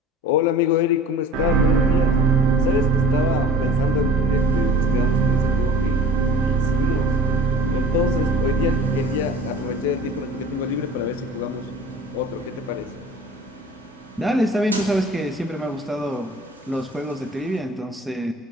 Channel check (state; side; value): normal; both; correlation 0.42